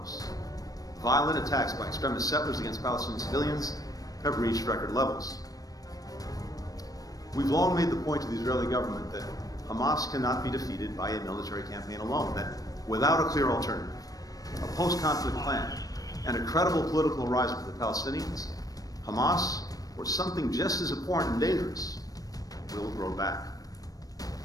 Violent attacks by extremist settlers against Palestinian civilians have reached record levels. We've long made the point to the Israeli government that Hamas cannot be defeated by a military campaign alone, that without a clear alternative, a post-conflict plan, and a credible political horizon for the Palestinians, Hamas, or something just as important and dangerous, will grow back.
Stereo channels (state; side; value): late; right; 0.18 ms